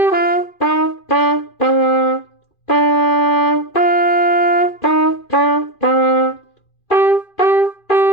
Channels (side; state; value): right; late; 2.5 ms